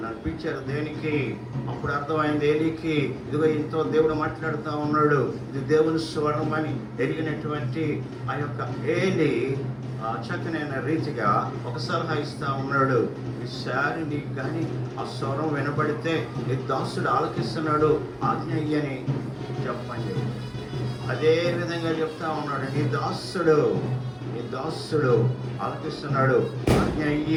అనిపించారు దేనికి? అప్పుడు అర్థమైంది ఏలికి, ఇదిగో ఇంతో దేవుడు మాట్లాడుతూ ఉన్నాడు, ఇది దేవుని స్వరం అని ఎరిగినటువంటి ఆ యొక్క ఏలి చక్కనైన రీతిగా ఒక సలహా ఇస్తా ఉన్నాడు. ఈసారి నీకు కానీ ఆ స్వరం వినబడితే నీ దాసుడు ఆలకిస్తున్నాడు, ఆజ్ఞ అయ్యని చెప్పండి. అదే విధంగా చెప్తా ఉన్నాడు, నీ దాసుడు ఆలకిస్తున్నాడు, ఆజ్ఞ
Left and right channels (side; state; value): both; identical; correlation 1.00